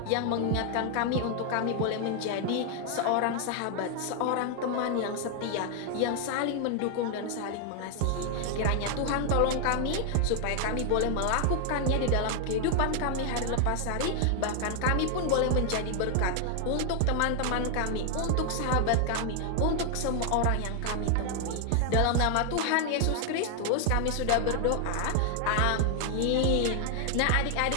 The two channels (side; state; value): both; different; correlation 0.00